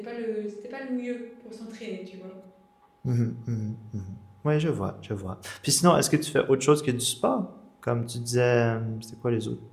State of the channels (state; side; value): identical; both; correlation 1.00